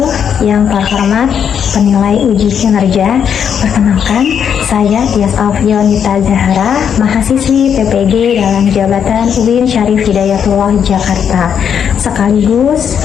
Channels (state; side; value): quieter; right; 8.0 dB